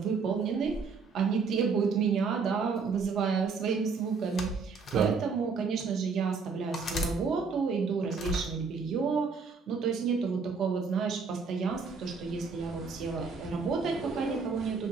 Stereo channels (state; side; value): quieter; left; 5.1 dB